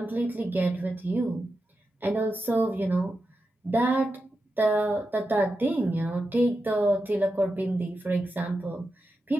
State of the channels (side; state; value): both; normal; correlation 0.89